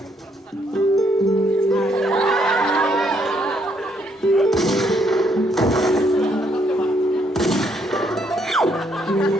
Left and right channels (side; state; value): both; normal; correlation 0.72